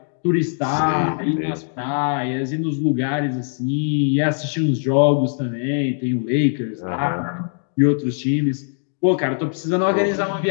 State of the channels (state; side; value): silent; right; digital silence